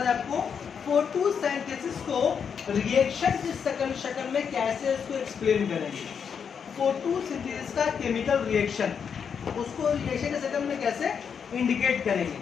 हैं आपको, फोटोसिंथेसिस को रिएक्शन के शक्ल में कैसे उसको एक्सप्लेन करेंगे। फोटोसिंथेसिस का केमिकल रिएक्शन, उसको रिएक्शन के शक्ल में कैसे इंडिकेट करेंगे,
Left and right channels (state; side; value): quieter; right; 6.9 dB